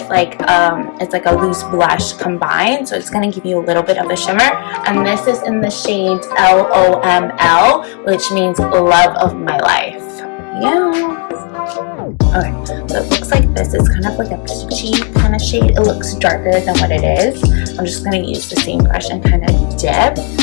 like it's like a loose blush combined, so it's going to give you a little bit of a shimmer, and this is in the shade LOML, which means love of my life. Yeah. Okay, so it looks like this is kind of like a peachy kind of shade. It looks darker than what it is. I'm just going to use the same brush and kind of dip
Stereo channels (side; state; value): right; quieter; 34.3 dB